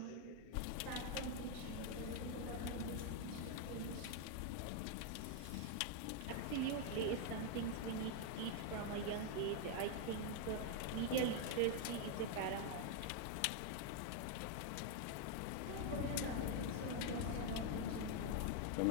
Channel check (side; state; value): both; different; correlation 0.00